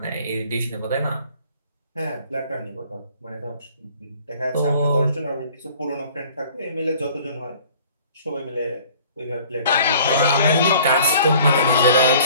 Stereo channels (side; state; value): both; inverted; correlation -0.52